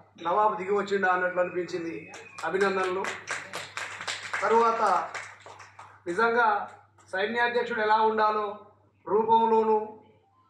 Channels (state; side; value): identical; both; correlation 1.00